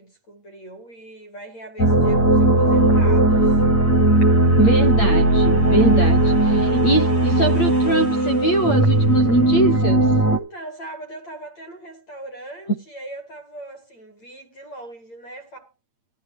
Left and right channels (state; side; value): late; right; 8.7 ms